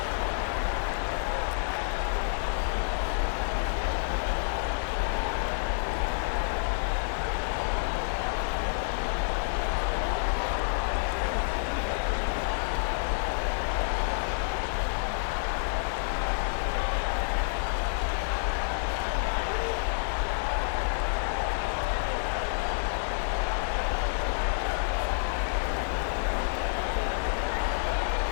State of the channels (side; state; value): right; silent; digital silence